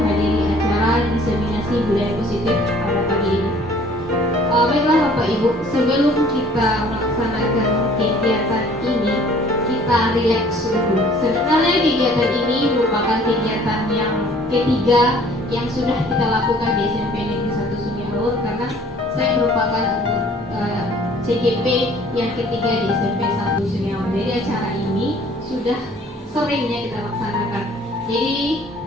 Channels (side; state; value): both; normal; correlation 0.54